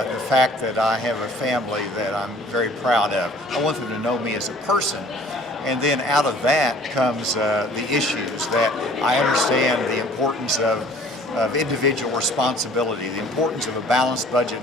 fact that I have a family that I'm very proud of. I want them to know me as a person. And then out of that comes the issues that I understand the importance of individual responsibility, the importance of a balanced budget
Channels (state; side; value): normal; both; correlation 0.52